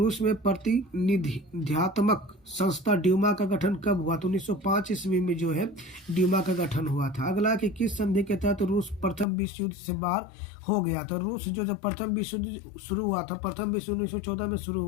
में प्रतिनिधित्वात्मक संस्था ड्यूमा का गठन कब हुआ। तो 1905 ईस्वी में जो है ड्यूमा का गठन हुआ था। अगला कि किस संधि के तहत रूस प्रथम विश्व युद्ध से बाहर हो गया। तो रूस जो जब प्रथम विश्व युद्ध शुरू हुआ था, प्रथम विश्व युद्ध 1914 में शुरू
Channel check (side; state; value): right; drops out; at 9.2 s